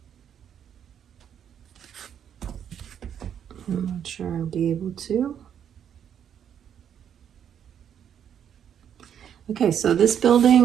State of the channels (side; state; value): left; quieter; 8.9 dB